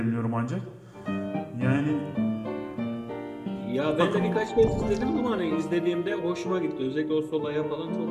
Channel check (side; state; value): both; identical; correlation 1.00